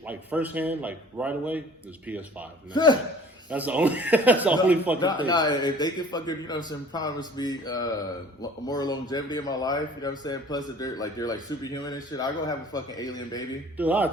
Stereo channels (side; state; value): both; normal; correlation 0.48